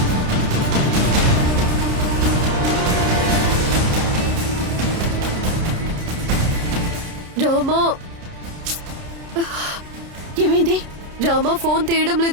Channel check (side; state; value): left; late; 30 ms